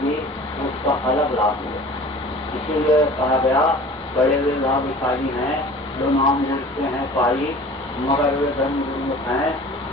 उसका अलग लाभ मिलेगा। इसीलिए कहा गया बड़े वे भाग्यशाली हैं जो नाम जुड़ते हैं पाई, मगर वे धर्म गुरुमुख हैं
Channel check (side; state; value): both; normal; correlation 0.43